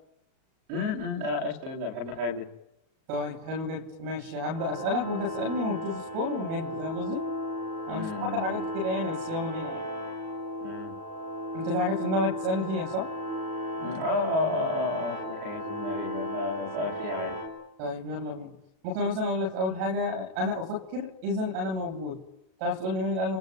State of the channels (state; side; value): late; left; 37 ms